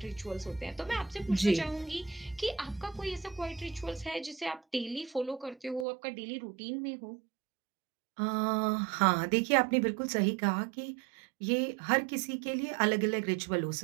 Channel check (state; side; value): drops out; left; at 5.9 s